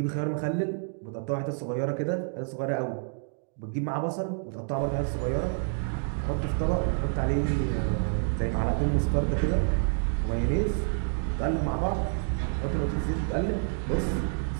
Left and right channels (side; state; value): left; silent; digital silence